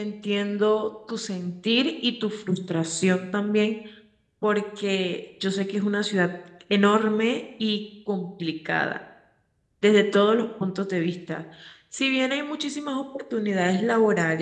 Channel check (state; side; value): identical; both; correlation 1.00